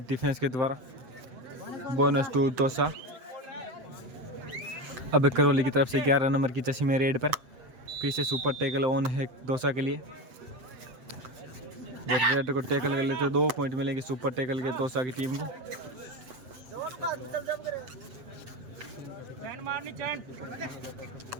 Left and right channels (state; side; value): late; left; 7.8 ms